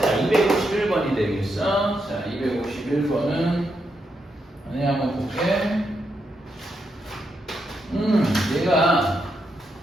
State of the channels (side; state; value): both; normal; correlation 0.82